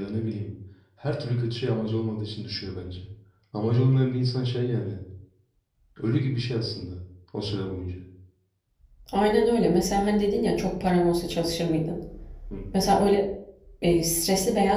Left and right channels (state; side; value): identical; both; correlation 1.00